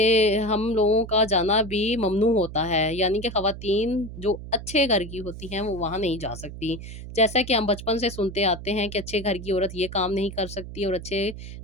हम लोगों का जाना भी ममनू होता है। यानी कि ख़वातीन जो अच्छे घर की होती हैं वो वहाँ नहीं जा सकती। जैसा कि हम बचपन से सुनते आते हैं कि अच्छे घर की औरत ये काम नहीं कर सकती और अच्छे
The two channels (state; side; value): noise; right; hum, 11 dB below the sound